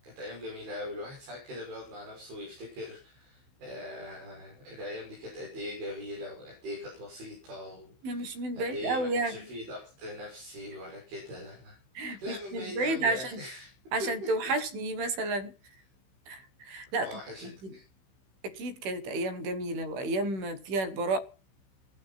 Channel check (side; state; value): left; late; 15 ms